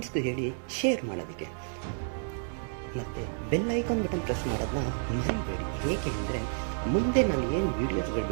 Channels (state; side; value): silent; left; digital silence